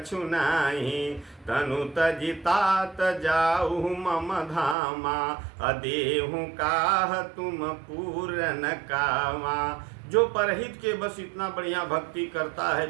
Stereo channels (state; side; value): drops out; left; at 4.8 s